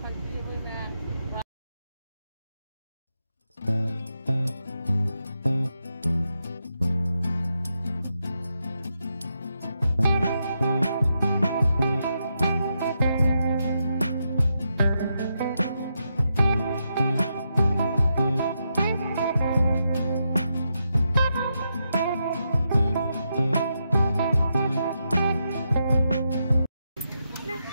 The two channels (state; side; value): inverted; both; correlation -0.84